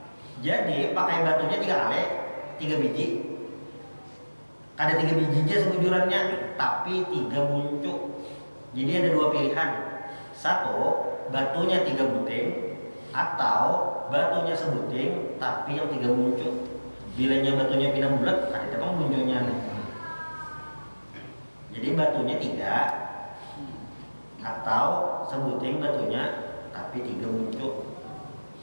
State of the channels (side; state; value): both; inverted; correlation -1.00